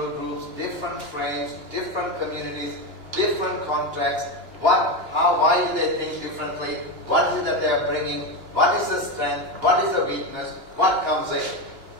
groups, different frames, different communities, different contexts. Why do they think differently? What is it that they are bringing? What is the strength? What is the weakness? What comes in?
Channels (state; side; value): late; left; 2.9 ms